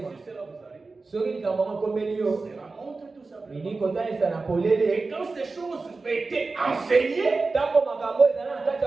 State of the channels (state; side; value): quieter; left; 3.8 dB